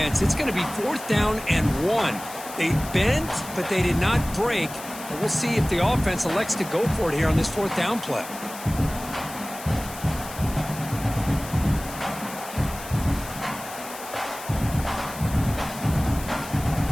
It's going to be 4th down and 1. They bent, but they did not break. And we'll see if the offense elects to go for it here on this 4th down play.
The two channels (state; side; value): noise; left; hiss, 13 dB below the sound